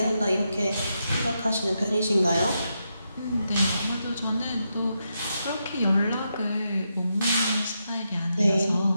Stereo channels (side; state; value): both; inverted; correlation -0.84